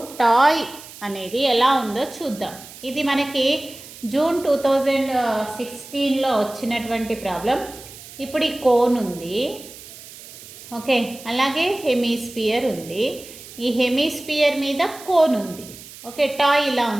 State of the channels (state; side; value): noise; right; hiss, 17 dB below the sound